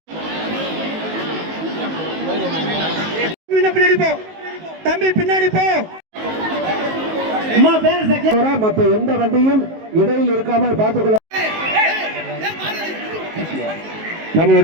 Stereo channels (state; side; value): late; left; 19 ms